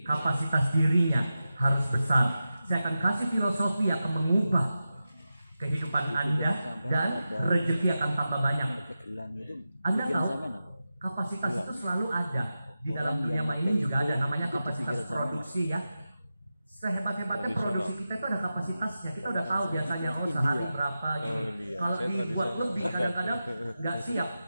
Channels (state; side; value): inverted; both; correlation -0.92